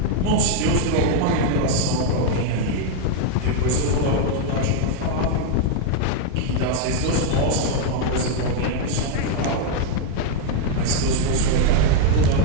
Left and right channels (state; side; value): different; both; correlation 0.00